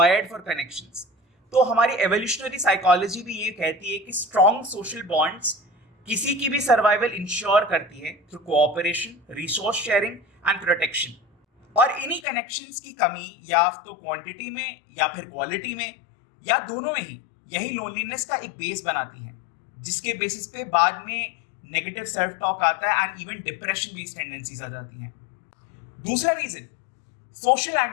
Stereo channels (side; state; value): right; drops out; at 12.2 s